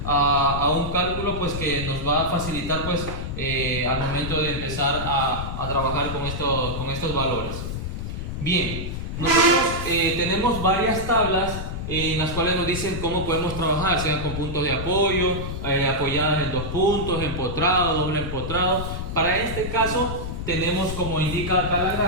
a un cálculo pues que nos va a facilitar pues al momento de empezar a trabajar con estos valores. Bien, nosotros tenemos varias tablas en las cuales nos dicen cómo podemos trabajar, sean con puntos de apoyo, apoyadas en dos puntos, empotrado, doble empotrado. Para este caso tenemos, como indica acá la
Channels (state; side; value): noise; left; rumble, 5 dB below the sound